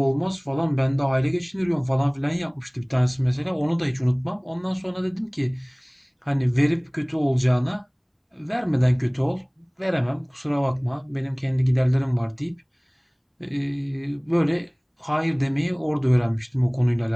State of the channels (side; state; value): both; identical; correlation 1.00